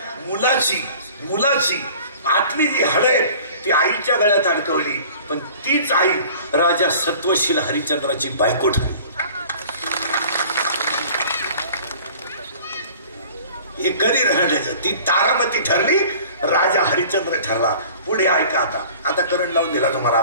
मुलाची आतली जी हळद ती आईच्या गळ्यात अडकवली. पण तीच आई राजा सत्वशील हरिश्चंद्राची बायको ठरली. हे कधी राहण्याचं ती तारामती ठरली. राजा हरिश्चंद्र ठरला. पुढे ऐका. आता करंट लावून दिला तुम्हाला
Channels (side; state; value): both; inverted; correlation -0.47